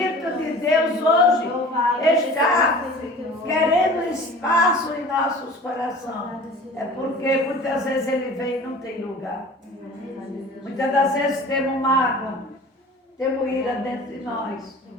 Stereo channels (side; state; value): both; normal; correlation 0.42